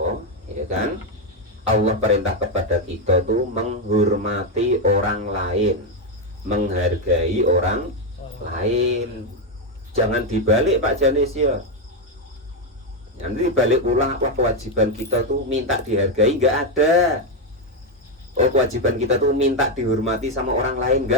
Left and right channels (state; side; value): normal; both; correlation 0.05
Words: ya kan, Allah perintah kepada kita tuh menghormati orang lain, menghargai orang lain. Jangan dibalik Pak Janis ya. Nanti balik ulang, apa kewajiban kita tuh minta dihargai, nggak ada. Oh kewajiban kita tuh minta dihormati sama orang lain,